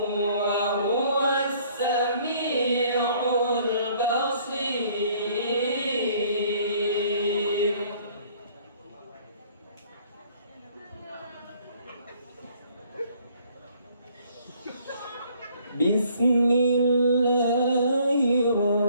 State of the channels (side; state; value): both; inverted; correlation -0.60